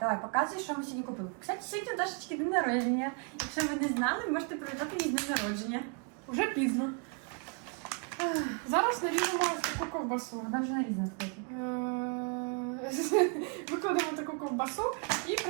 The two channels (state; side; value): quieter; left; 36.2 dB